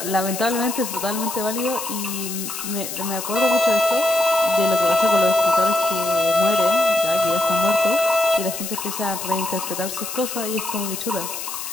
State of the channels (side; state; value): left; noise; hiss, 7 dB below the sound